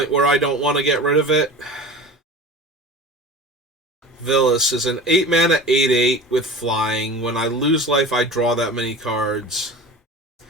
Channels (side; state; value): both; normal; correlation 0.34